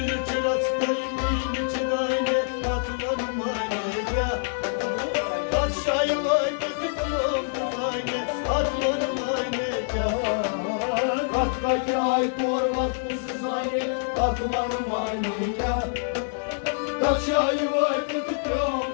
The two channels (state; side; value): silent; right; 59 dB below the other